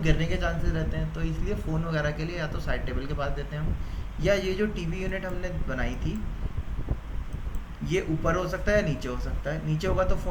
के चांसेस रहते हैं। तो इसलिए फ़ोन वगैरह के लिए या तो साइड टेबल के पास देते हैं हम, या ये जो टीवी यूनिट हमने बनाई थी ये ऊपर हो सकता है या नीचे हो सकता है। नीचे होगा तो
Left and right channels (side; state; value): both; identical; correlation 1.00